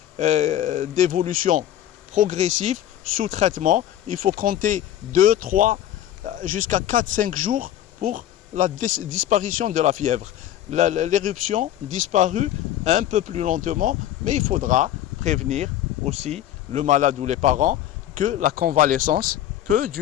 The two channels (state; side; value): quieter; right; 12.0 dB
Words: d'évolution progressive sous traitement. Il faut compter 2, 3, jusqu'à 4, 5 jours pour la disparition de la fièvre. L'éruption disparue un peu plus lentement, mais il faudra prévenir aussi le malade ou les parents que la convalescence peut